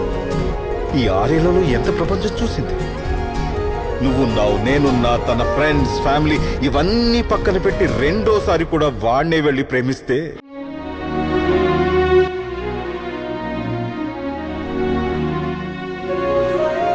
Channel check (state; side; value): identical; both; correlation 1.00